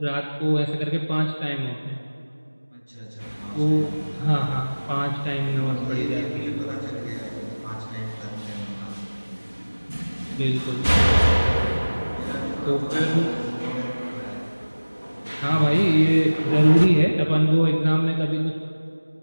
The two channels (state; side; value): inverted; both; correlation -1.00